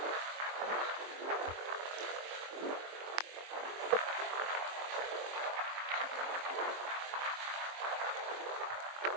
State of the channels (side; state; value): left; late; 22 ms